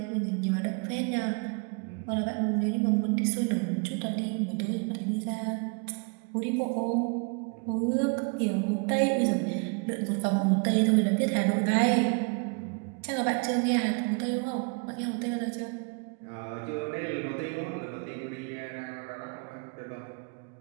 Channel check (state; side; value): quieter; left; 35.4 dB